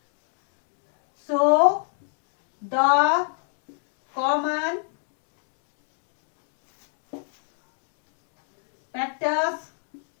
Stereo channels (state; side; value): silent; right; digital silence